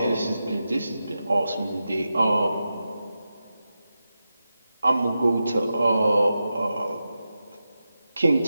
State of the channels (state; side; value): inverted; both; correlation -0.90